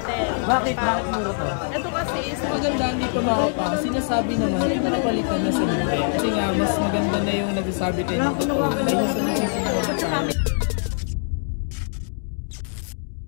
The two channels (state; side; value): silent; right; digital silence